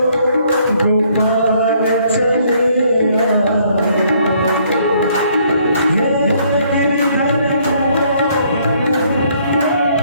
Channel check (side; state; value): both; inverted; correlation -0.65